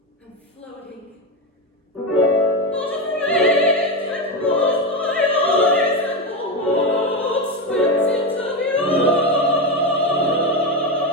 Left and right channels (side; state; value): both; normal; correlation 0.14